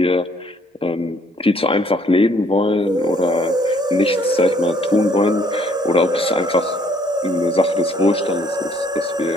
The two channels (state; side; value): normal; both; correlation 0.63